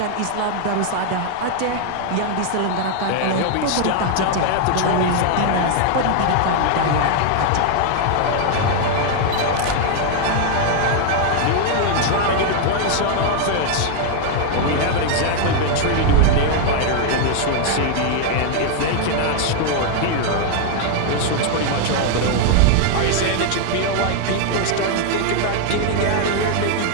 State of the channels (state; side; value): different; both; correlation 0.00